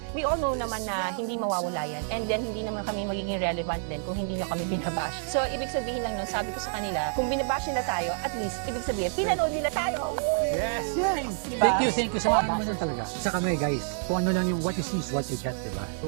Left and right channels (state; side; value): silent; left; digital silence